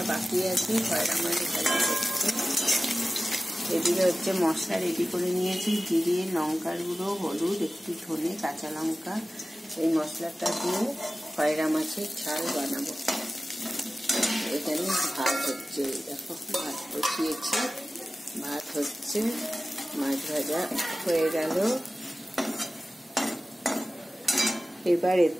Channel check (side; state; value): both; normal; correlation 0.96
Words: বাকি আছে, খয়রা মাছ ভাজা হচ্ছে। এদিকে হচ্ছে মশলা রেডি করে নিয়েছি, জিরে, লঙ্কার গুঁড়ো, হলুদ, একটু ধনে, কাঁচা লঙ্কা। এই মশলাটা দিয়ে খয়রা মাছের ঝাল বানাবো। এখানে ভাত হচ্ছে, দেখো ভাত বসিয়েছি, ভাত হচ্ছে, মাছ ভাজা হয়ে গেল। এবার